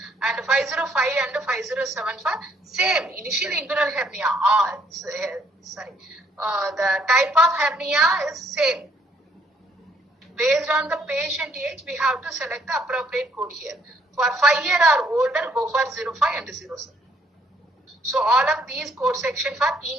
And 505 and 507 for same initial inguinal hernia. The type of hernia is same. Based on the patient age, we have to select the appropriate code here. For 5 year or older, go for 05 and 07. So all of these code section for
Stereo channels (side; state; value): both; normal; correlation 0.68